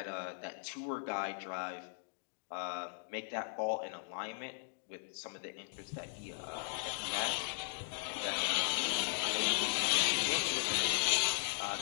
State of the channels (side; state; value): right; silent; digital silence